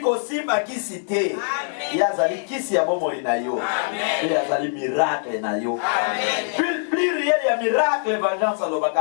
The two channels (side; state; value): right; silent; digital silence